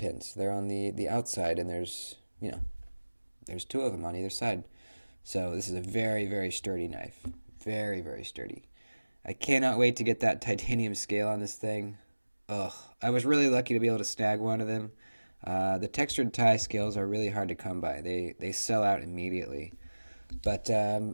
They're on the outside, and there's two of them on either side. So this is a very, very sturdy knife. Very, very sturdy. I cannot wait to get that titanium scale on this thing. Ugh, I was really lucky to be able to snag one of them. The textured tie scales are really hard to come by. They sell out immediately. But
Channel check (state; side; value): inverted; both; correlation -1.00